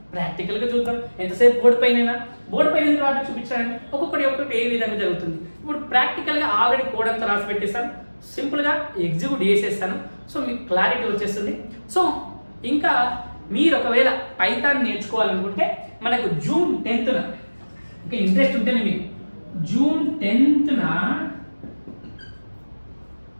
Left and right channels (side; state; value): both; inverted; correlation -1.00